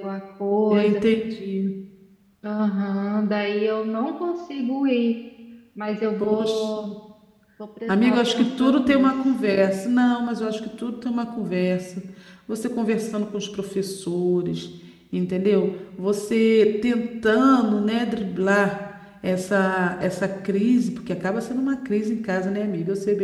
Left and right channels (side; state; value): both; identical; correlation 1.00